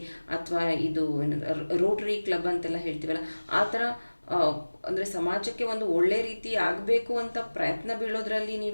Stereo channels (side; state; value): both; inverted; correlation -1.00